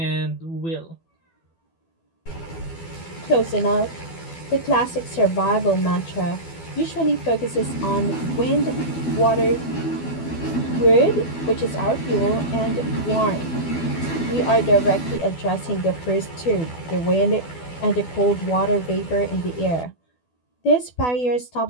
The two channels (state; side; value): late; right; 12 ms